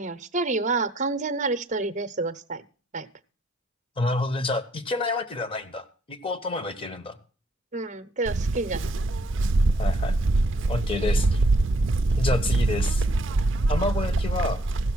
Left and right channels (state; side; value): normal; both; correlation 0.68